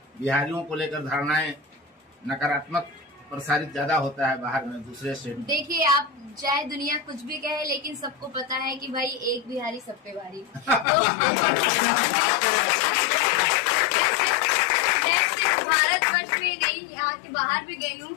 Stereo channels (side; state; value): right; drops out; at 10.9 s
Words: बिहारियों को लेकर धारणाएं नकारात्मक प्रसारित ज्यादा होता है बाहर में, दूसरे स्टेट में। देखिए, आप चाहे दुनिया कुछ भी कहे, लेकिन सबको पता है कि भाई एक बिहारी सब पे भारी। तो मैं सिर्फ भारतवर्ष में नहीं, यहाँ के बाहर भी गई